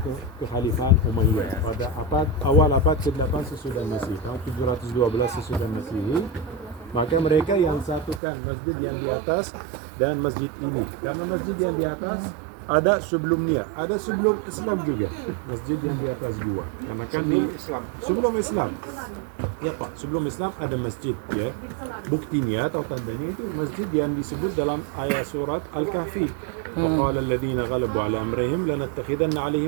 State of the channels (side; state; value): left; drops out; at 8.2 s